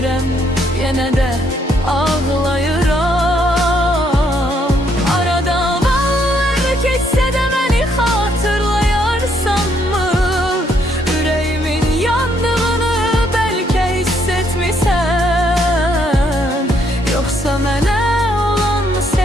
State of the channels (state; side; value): normal; both; correlation 0.71